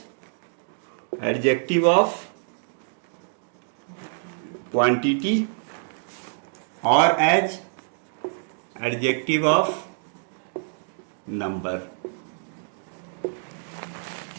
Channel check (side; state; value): left; silent; digital silence